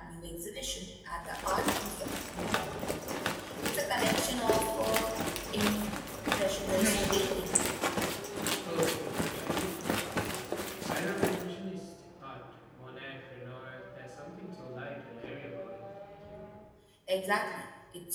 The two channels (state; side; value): identical; both; correlation 1.00